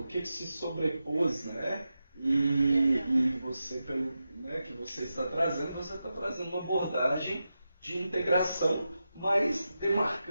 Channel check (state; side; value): inverted; both; correlation -0.90